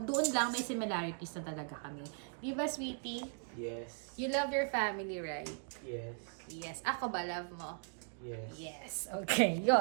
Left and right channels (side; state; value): left; silent; 52 dB below the other